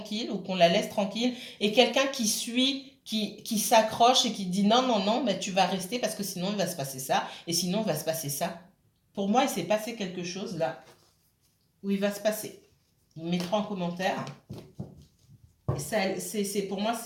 ou qu'on la laisse tranquille. Et quelqu'un qui suit, qui s'accroche et qui dit non, non, non, mais tu vas rester parce que sinon il va se passer ça. Et sinon il va se passer ça. Pour moi, il s'est passé quelque chose là où il va se passer. Vous mettrez en commentaire. Pour moi,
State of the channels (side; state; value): both; identical; correlation 1.00